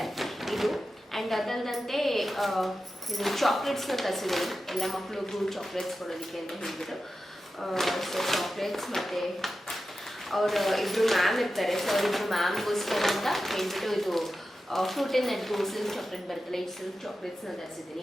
ಇದು. ಆ್ಯಂಡ್ ಅದಲ್ಲದಂತೆ ಇದು ಚಾಕ್ಲೇಟ್ಸ್ನ ತರಿಸಿದ್ದೀನಿ, ಎಲ್ಲ ಮಕ್ಕಳಿಗೂ ಚಾಕ್ಲೇಟ್ಸ್ ಕೊಡೋದಕ್ಕೆ ಅಂತ ಹೇಳ್ಬಿಟ್ಟು. ಸೊ ಚಾಕ್ಲೇಟ್ಸ್ ಮತ್ತು ಅವರು ಇಬ್ಬರು ಮ್ಯಾಮ್ ಇರ್ತಾರೆ. ಸೊ ಅವರಿಬ್ಬರು ಮ್ಯಾಮ್ಗೋಸ್ಕರ ಅಂತ ಹೇಳ್ಬಿಟ್ಟು ಇದು ಫ್ರೂಟ್ ಆ್ಯಂಡ್ ನಟ್ಗೂ ಸಿಲ್ಕ್ ಚಾಕ್ಲೇಟ್ ಬರುತ್ತಲ್ಲ, ಈ ಸಿಲ್ಕ್ ಚಾಕ್ಲೇಟ್ಸ್ನ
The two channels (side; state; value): both; normal; correlation 0.92